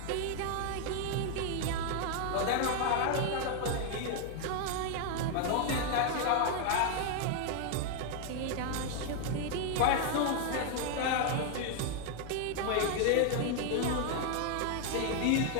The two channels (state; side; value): different; both; correlation 0.01